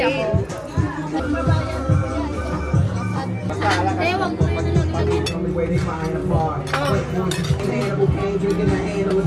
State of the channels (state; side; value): identical; both; correlation 1.00